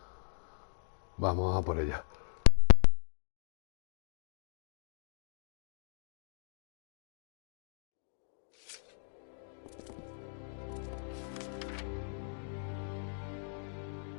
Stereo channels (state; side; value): silent; right; digital silence